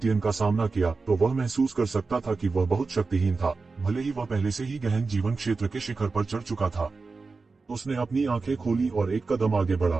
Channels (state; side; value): quieter; left; 4.2 dB